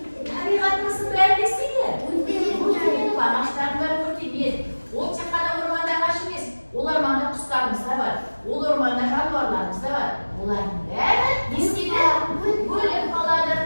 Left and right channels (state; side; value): inverted; both; correlation -1.00